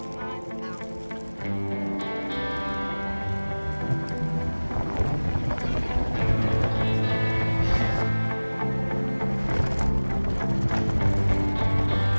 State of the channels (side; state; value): both; inverted; correlation -1.00